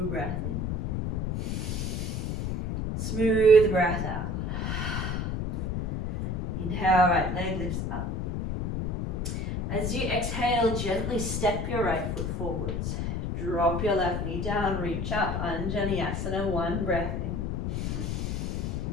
breath in. Smooth breath out. Inhale, right leg lifts up. As you exhale, gently step your right foot forwards. Drop your left knee down, reach up, Anjaneyasana, one breath in.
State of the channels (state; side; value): noise; left; rumble, 1 dB below the sound